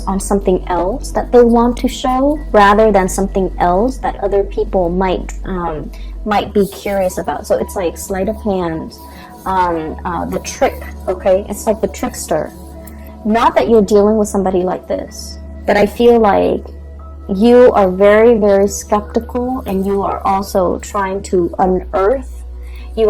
on something else that they want to show rather than something else that other people might be curious about. So it's like sleight of hand, the trick, okay? It's like the trickster. Not that you're dealing with somebody like this, but I feel like you are very, very skeptical, and you are also trying to unearth. You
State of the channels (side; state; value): both; identical; correlation 1.00